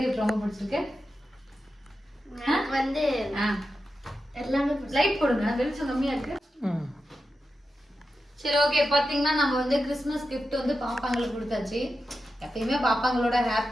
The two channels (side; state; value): both; normal; correlation 0.90